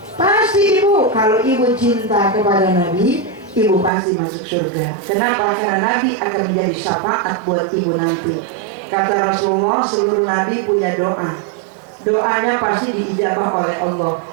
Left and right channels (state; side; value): drops out; left; at 3.9 s